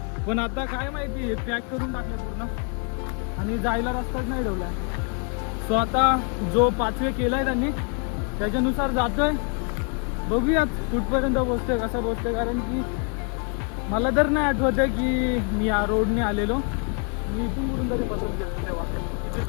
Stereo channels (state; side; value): quieter; right; 39.6 dB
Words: पण आता काय माहिती हे पॅक करून टाकलं पूर्ण आणि जायला रस्ताच नाही ठेवला. सो आता जो पाथवे केलाय त्यांनी त्याच्यानुसार जातोय. बघूयात कुठपर्यंत पोहोचतोय, कसा पोहोचतोय, कारण की मला तर नाही आठवत आहे की मी या रोडने आलेलो. मी इथून कुठून तरी बसून गेलो तेव्हा, किती